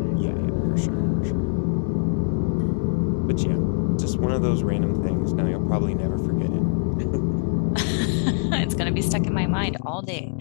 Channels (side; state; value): right; silent; digital silence